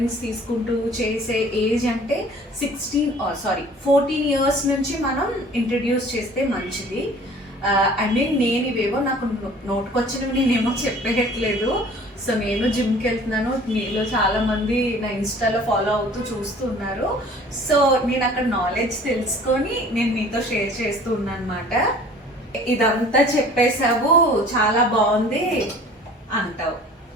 తీసుకుంటూ చేసే ఏజ్ అంటే 14 years నుంచి మనం ఇంట్రడ్యూస్ చేస్తే మంచిది. నేను ఇవేవో నాకు నోటుకొచ్చినవి నేనేమో చెప్పేయట్లేదు. సో నేను జిమ్కి వెళ్తున్నాను, మీలో చాలా మంది నా ఇన్స్టాలో ఫాలో అవుతూ చూస్తూ ఉన్నారు. సో నేను అక్కడ నాలెడ్జ్ తెలుసుకొని నేను మీతో షేర్ చేస్తూ ఉన్నాను అనమాట. ఇదంతా చెప్పేసావు, చాలా బాగుంది అంటావు.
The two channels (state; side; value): normal; both; correlation 0.49